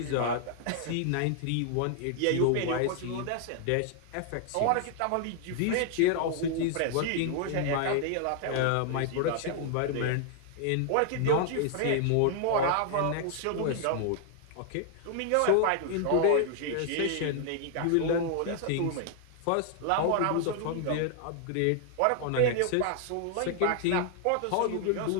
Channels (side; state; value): both; different; correlation 0.00